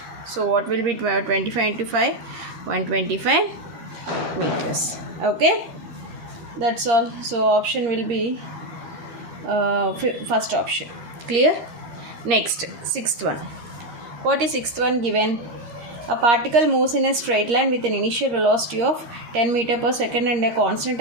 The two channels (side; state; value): left; late; 13 ms